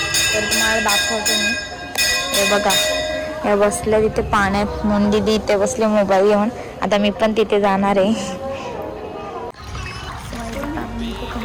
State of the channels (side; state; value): both; identical; correlation 1.00